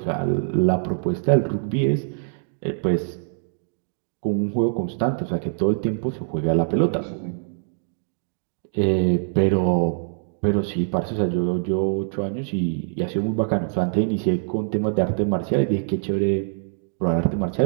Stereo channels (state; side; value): silent; left; digital silence